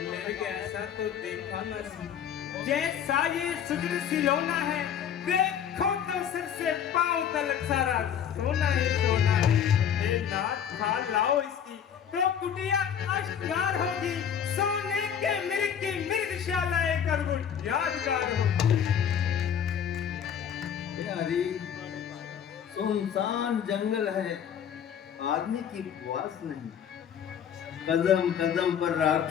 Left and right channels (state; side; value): quieter; right; 8.6 dB